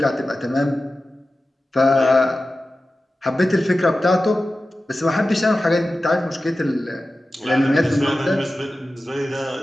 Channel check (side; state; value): both; normal; correlation 0.94